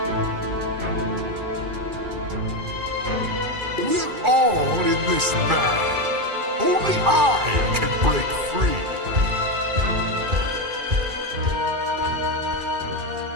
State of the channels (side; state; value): left; late; 2.4 ms